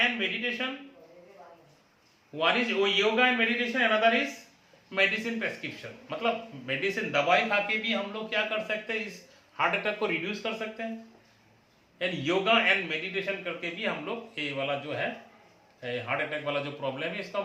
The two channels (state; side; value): identical; both; correlation 1.00